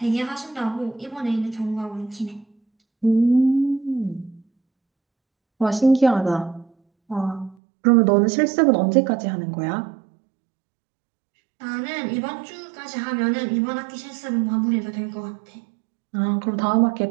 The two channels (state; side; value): drops out; left; at 7.6 s